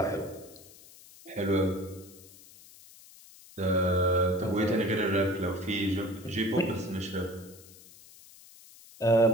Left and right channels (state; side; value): noise; left; hiss, 22 dB below the sound